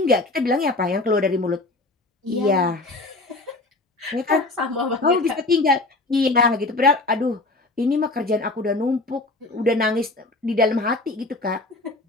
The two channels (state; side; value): quieter; right; 3.1 dB